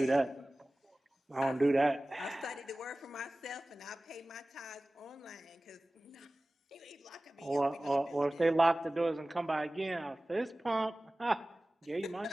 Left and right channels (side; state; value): both; normal; correlation 0.97